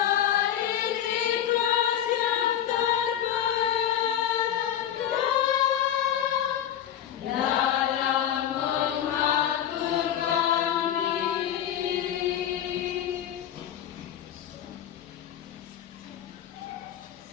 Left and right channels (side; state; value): right; quieter; 10.4 dB